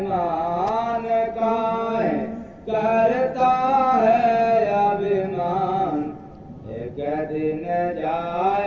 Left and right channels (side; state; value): both; identical; correlation 1.00